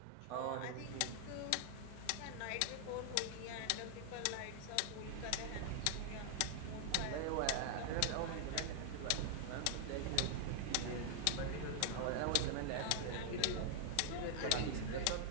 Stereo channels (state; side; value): different; both; correlation 0.00